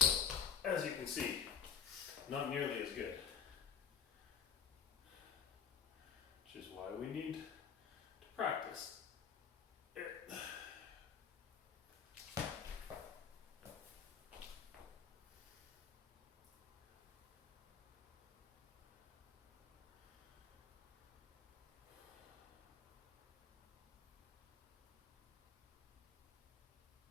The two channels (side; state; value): right; quieter; 6.9 dB